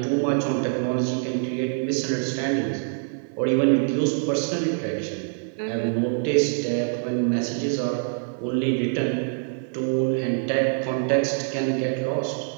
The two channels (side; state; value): left; silent; 62 dB below the other